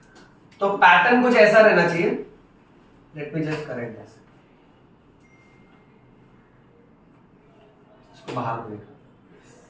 तो पैटर्न कुछ ऐसा रहना चाहिए। Let me just correct this, इसको बाहर देखो।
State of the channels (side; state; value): both; identical; correlation 1.00